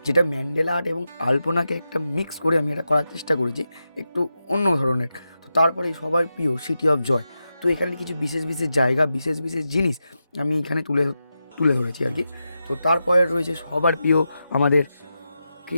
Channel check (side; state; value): both; inverted; correlation -0.89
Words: যেটা ম্যান্ডেলা আর্ট এবং আলপনাকে একটা মিক্স করে আমি এটা করার চেষ্টা করেছি, একটু অন্য ধরনের। তো তারপরেই সবার প্রিয় সিটি অফ জয়। তো এখানে কিছু বিশেষ বিশেষ জায়গা, বিশেষ বিশেষ জিনিস আমি এখানে তুলে তুলে ধরেছি আর কি। তো তারপরে রয়েছে সবার প্রিয় আমাদের